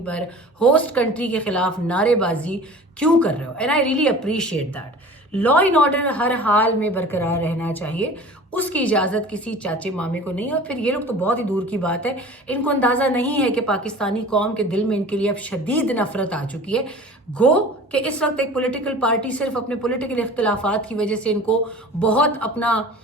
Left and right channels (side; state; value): both; normal; correlation 0.41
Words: پر ہوسٹ کنٹری کے خلاف نعرے بازی کیوں کر رہے ہو؟ And I really appreciate that. Law and order ہر حال میں برقرار رہنا چاہیے، اس کی اجازت کسی چاچے مامے کو نہیں. اور پھر یہ لوگ تو بہت ہی دور کی بات ہے، ان کو اندازہ نہیں ہے کہ پاکستانی قوم کے دل میں ان کے لیے اب شدید نفرت آ چکی ہے. گو کہ اس وقت ایک پولیٹیکل پارٹی صرف اپنے پولیٹیکل اختلافات کی وجہ سے ان کو بہت اپنا